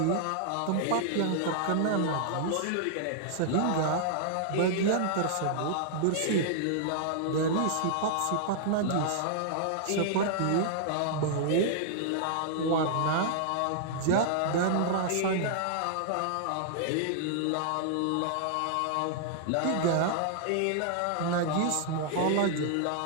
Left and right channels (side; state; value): both; different; correlation -0.01